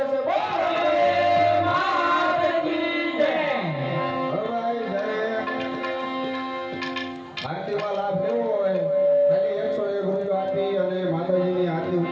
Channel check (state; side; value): identical; both; correlation 1.00